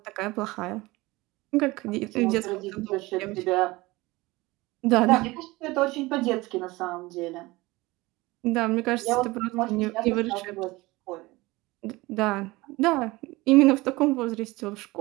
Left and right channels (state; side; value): quieter; left; 21.1 dB